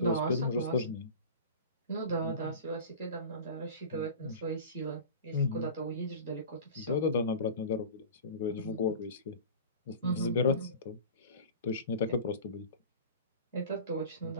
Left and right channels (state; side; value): inverted; both; correlation -0.35